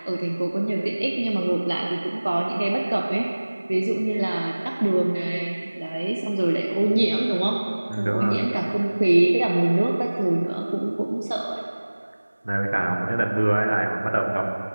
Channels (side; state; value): both; inverted; correlation -1.00